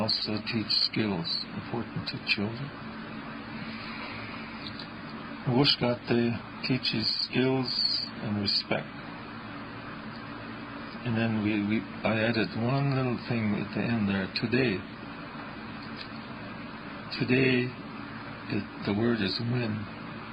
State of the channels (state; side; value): identical; both; correlation 1.00